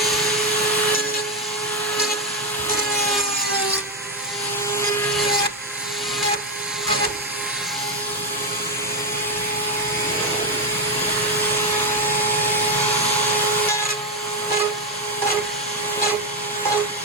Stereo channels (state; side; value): normal; both; correlation 0.06